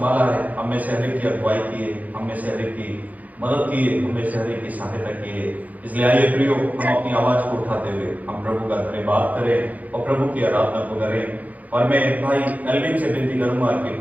है, हमें से हरेक की अगुवाई की है, हमें से हरेक की मदद की है, हमें से हरेक की सहायता की है। इसलिए आइए प्रियो, हम अपनी आवाज को उठाते हुए हम प्रभु का धन्यवाद करें और प्रभु की आराधना को करें। और मैं भाई एल्विन से विनती करूंगा कि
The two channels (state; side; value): late; left; 0.077 ms